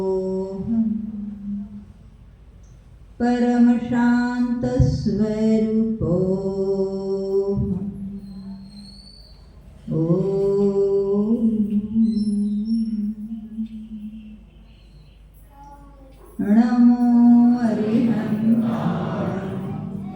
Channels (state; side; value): identical; both; correlation 1.00